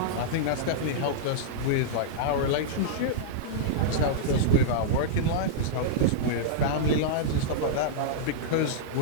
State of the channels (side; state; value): both; different; correlation -0.03